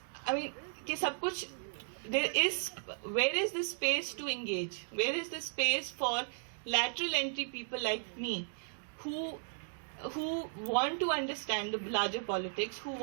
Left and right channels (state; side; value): silent; left; digital silence